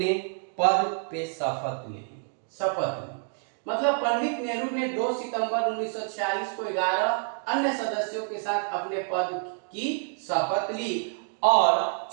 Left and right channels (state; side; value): silent; left; 60 dB below the other